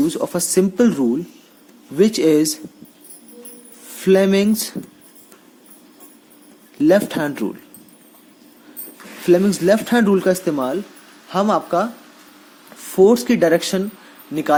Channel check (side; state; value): both; identical; correlation 1.00